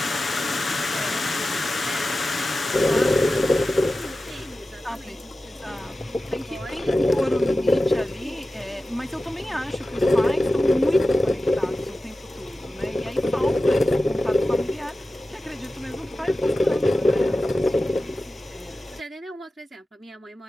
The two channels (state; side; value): normal; both; correlation 0.94